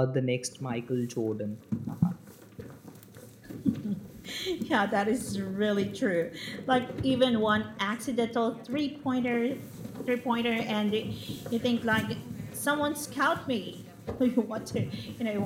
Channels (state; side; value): identical; both; correlation 1.00